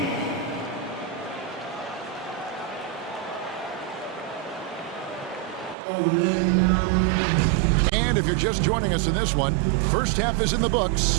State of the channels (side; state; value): left; drops out; at 5.8 s